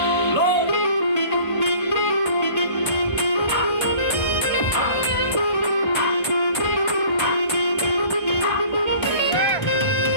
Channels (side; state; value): right; late; 1.5 ms